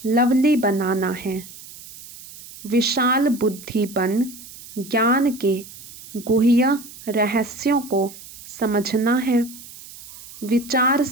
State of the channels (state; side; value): noise; right; hiss, 17 dB below the sound